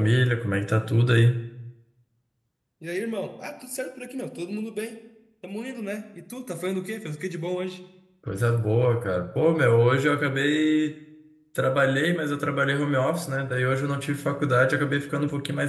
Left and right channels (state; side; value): identical; both; correlation 1.00